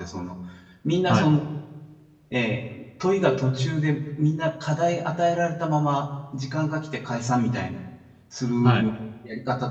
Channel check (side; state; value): both; identical; correlation 1.00